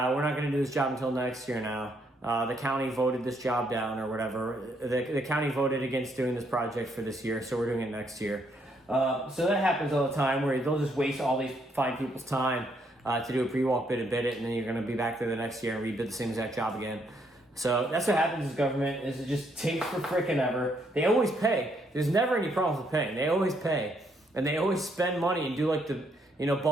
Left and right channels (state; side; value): normal; both; correlation 0.72